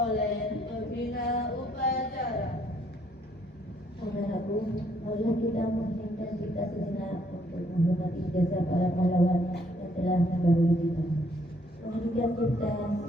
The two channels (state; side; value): normal; both; correlation 0.68